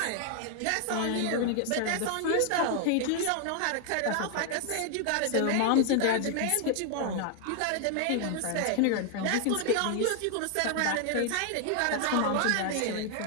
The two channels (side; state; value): both; different; correlation 0.00